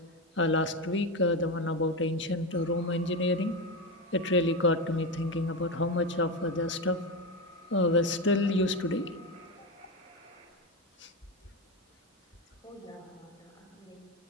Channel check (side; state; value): both; normal; correlation 0.15